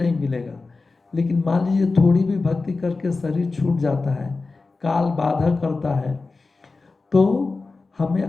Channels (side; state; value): right; quieter; 3.8 dB